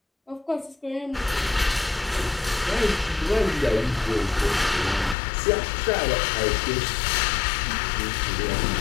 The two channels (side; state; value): right; drops out; at 5.2 s